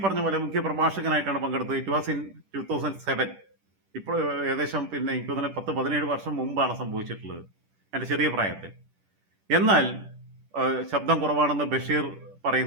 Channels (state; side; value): late; left; 10 ms